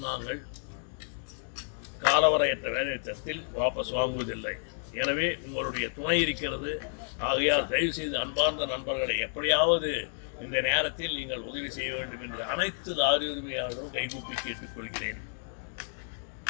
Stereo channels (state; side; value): silent; right; digital silence